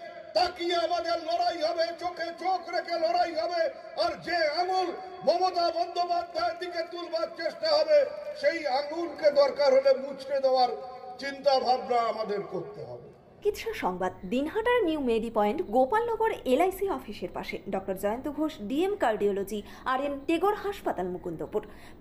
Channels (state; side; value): identical; both; correlation 1.00